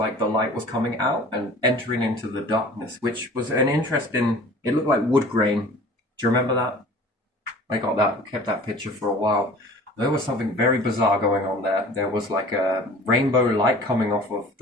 the light was coming out and entering into the darkness, which was an interesting. It looked like wood grain. Do you remember that? I got that, kept that picture for a while. There was something very bizarre going on there. There was like a rainbow light coming off of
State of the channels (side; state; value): both; normal; correlation 0.45